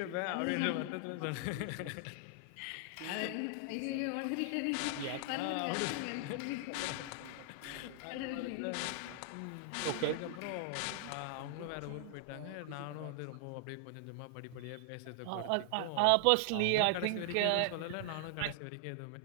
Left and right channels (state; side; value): different; both; correlation 0.00